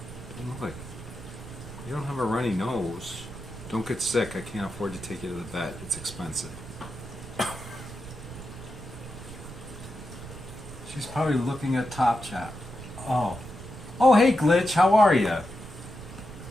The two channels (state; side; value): noise; right; rumble, 13 dB below the sound